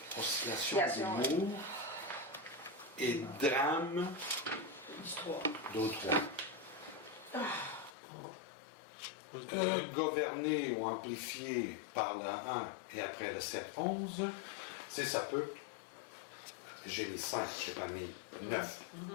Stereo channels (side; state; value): right; drops out; at 7.9 s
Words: d'humour et drames du 3. d'autres. Gouverné ou amplifié par le 1 et après le 7-11, c'est ça peut. J'ai mis 5, je n'ai pas mis 9.